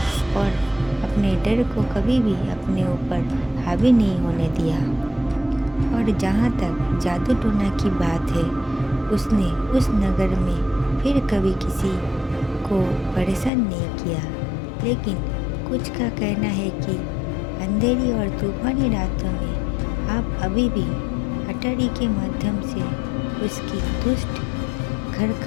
और अपने डर को कभी भी अपने ऊपर हावी नहीं होने दिया। और जहाँ तक जादू टोना की बात है, उसने उस नगर में फिर कभी किसी को परेशान नहीं किया। लेकिन कुछ का कहना है कि अंधेरी और तूफानी रातों में आप अभी भी अटारी के माध्यम से उसकी दुष्ट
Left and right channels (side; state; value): right; drops out; at 13.5 s